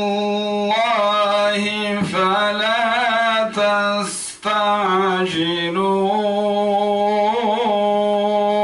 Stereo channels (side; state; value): both; identical; correlation 1.00